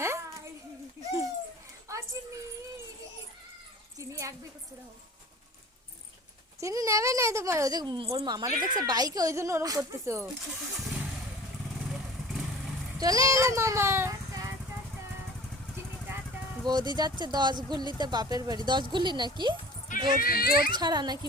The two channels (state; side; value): normal; both; correlation 0.43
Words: চিনি নেবে না তোমার, ওই যে ওর মামারে দেখছে বাইকে, ওই জন্য ওরকম করতেছো। চলে এলো মামা। বৌদি যাচ্ছে 10 গুল্লিতে বাপের বাড়ি। 10 গুল্লি নাকি জোর জোর ছাড়া নাকি